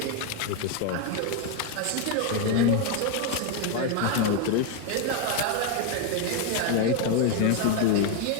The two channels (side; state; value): both; different; correlation 0.01